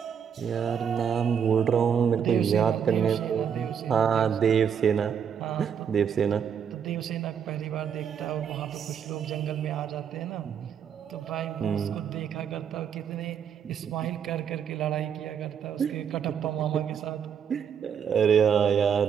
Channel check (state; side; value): quieter; left; 7.8 dB